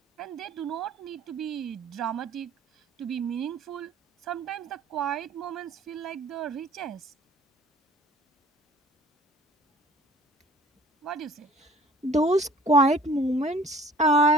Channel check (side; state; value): both; normal; correlation 0.51